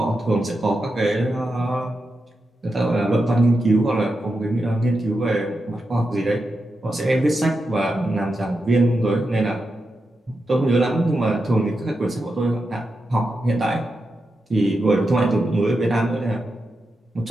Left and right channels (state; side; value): normal; both; correlation 0.88